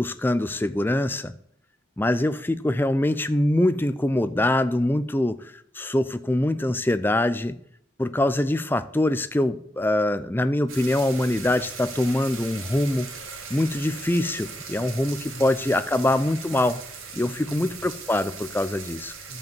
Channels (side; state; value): both; normal; correlation 0.85